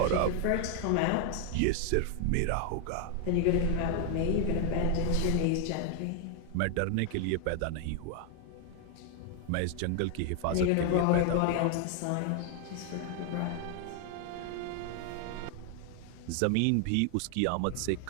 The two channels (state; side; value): different; both; correlation 0.00